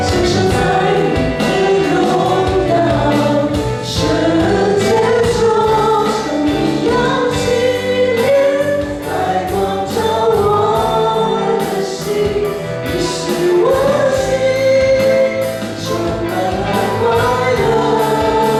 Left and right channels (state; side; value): identical; both; correlation 1.00